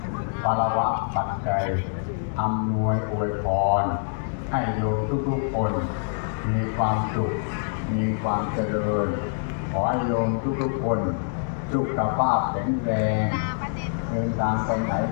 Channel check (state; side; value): silent; right; digital silence